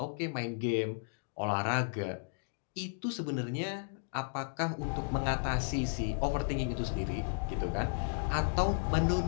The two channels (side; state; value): right; silent; digital silence